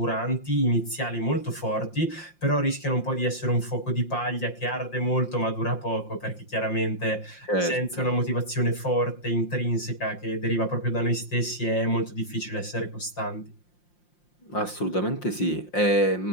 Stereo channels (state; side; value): late; right; 5.7 ms